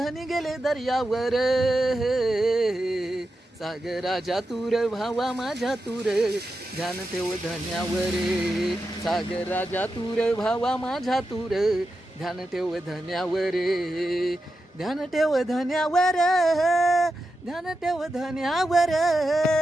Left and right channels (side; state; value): both; normal; correlation 0.89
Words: गेले दर्यावर, सागराच्या तूर भावा माझ्या तूर, ध्यान ठेव धन्यावर, सागराच्या तूर भावा माझ्या तूर, ध्यान ठेव धन्यावर, ध्यान ठेव धन्यावर, ध्यान ठेव धन्यावर।